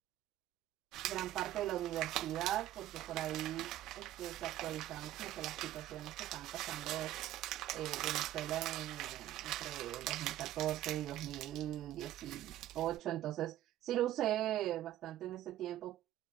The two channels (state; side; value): quieter; left; 13.6 dB